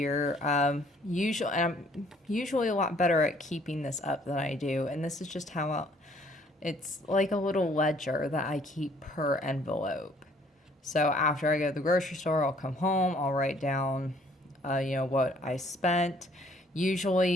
I'm usually a lot better at keeping this up than I do. And this is just how it's like a little ledger that I keep per envelope. So after I go to the grocery store, I'll come home, I'll write down what I spent.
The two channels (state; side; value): normal; both; correlation 0.61